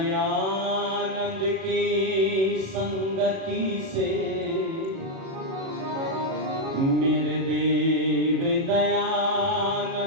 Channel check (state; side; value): late; left; 37 ms